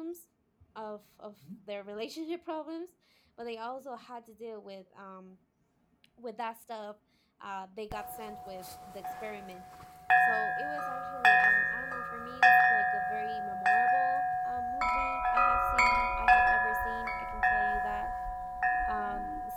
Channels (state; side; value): identical; both; correlation 1.00